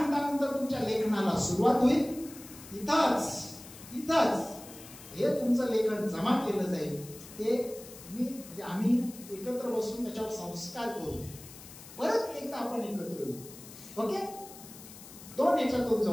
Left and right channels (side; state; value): left; noise; hiss, 17 dB below the sound